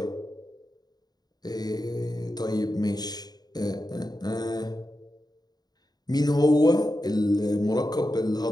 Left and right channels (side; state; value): right; late; 0.19 ms